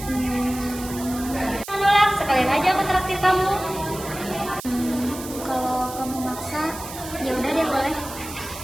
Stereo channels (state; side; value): noise; right; hiss, 12 dB below the sound